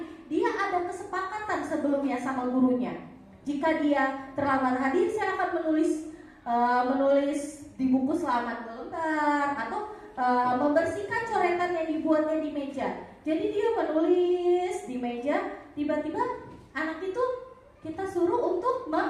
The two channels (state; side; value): identical; both; correlation 1.00